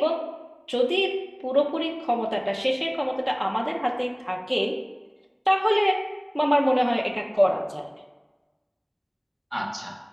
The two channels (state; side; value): identical; both; correlation 1.00